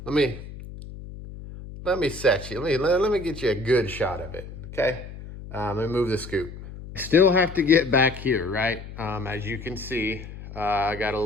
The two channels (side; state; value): left; noise; hum, 13 dB below the sound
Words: me set you, let me get you a good shot of it, okay? Let me move the scoop. Still have to get back here, right? As you can see, I got a